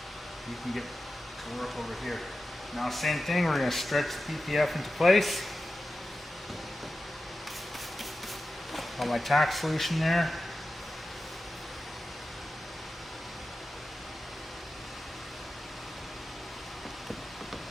you can get to work over here. Now same thing, we're gonna stretch the PPF into place. Got my tack solution there.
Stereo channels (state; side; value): normal; both; correlation 0.93